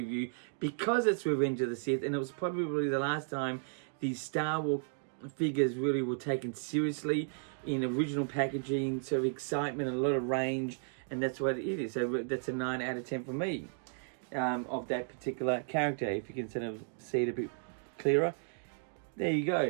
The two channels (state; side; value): silent; left; digital silence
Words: because it's Revenge of the Sith, and it was probably the last time these Star Wars figures really were taken seriously in original packaging, sort of excitement and a lot of range, and that's what it is. So that's a 9 out of 10 for me of that particular character. If you can sort of see it a bit clearer, there you